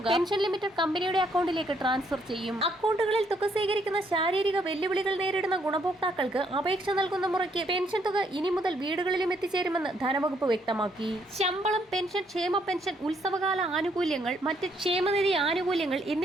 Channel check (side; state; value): both; normal; correlation 0.71